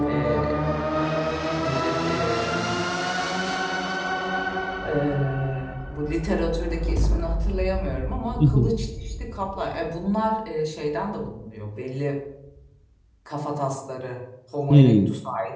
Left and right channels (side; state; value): both; identical; correlation 1.00